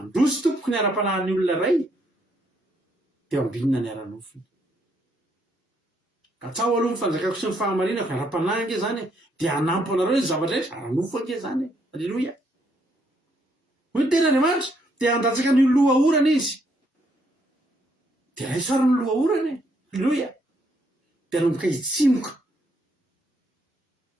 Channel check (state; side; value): normal; both; correlation 0.72